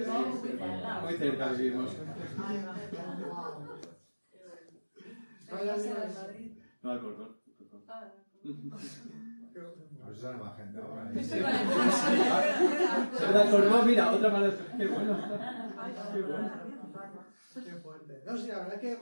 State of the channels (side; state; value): both; inverted; correlation -1.00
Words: muy cerca vivimos. Vaya Vaya Dios. de Madrid. No, Alcorcón. Ah, A ver si sale más gente ahora. Estoy con el Se me Alcorcón, mira, otra más. Qué bueno. Qué bueno. Qué fuerte. No, sí, la verdad es que en